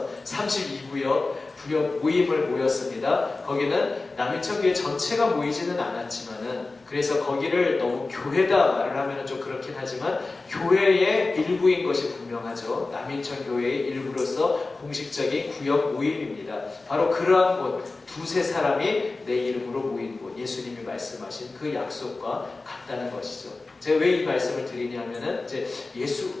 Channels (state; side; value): quieter; right; 3.5 dB